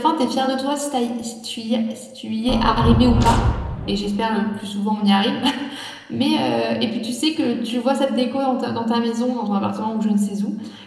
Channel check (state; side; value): identical; both; correlation 1.00